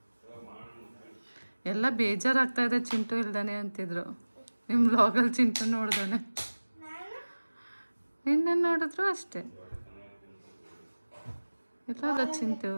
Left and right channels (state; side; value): inverted; both; correlation -1.00